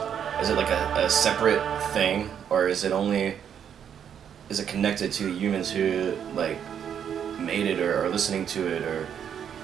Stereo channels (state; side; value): quieter; left; 8.5 dB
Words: is it like a separate thing, or is it connected to humans who like made it or are listening to it, or